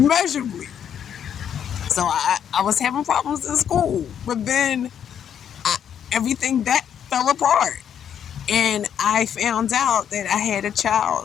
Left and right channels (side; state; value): right; quieter; 8.9 dB